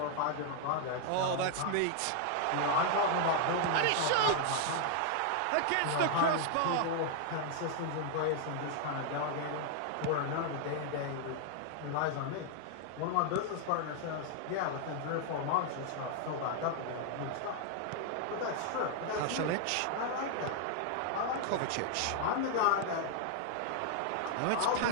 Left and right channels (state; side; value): different; both; correlation 0.00